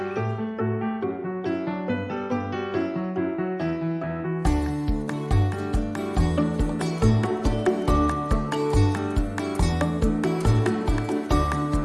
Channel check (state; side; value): identical; both; correlation 1.00